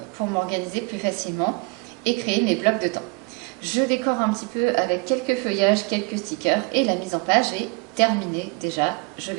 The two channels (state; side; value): quieter; left; 29.4 dB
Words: pour m'organiser plus facilement et créer mes blocs de temps. Je décore un petit peu avec quelques feuillages, quelques stickers et la mise en page est terminée déjà. Je